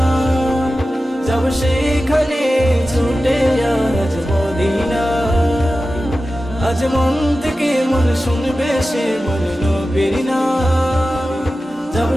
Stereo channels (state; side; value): normal; both; correlation 0.94